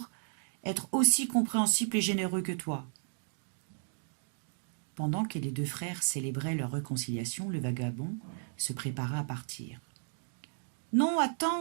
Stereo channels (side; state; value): left; silent; digital silence